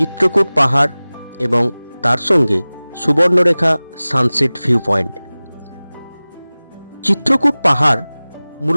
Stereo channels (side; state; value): both; inverted; correlation -0.99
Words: পাহাড় এবং তার সঙ্গে Subarnarekha sunset view point. Chitrakoot পাহাড়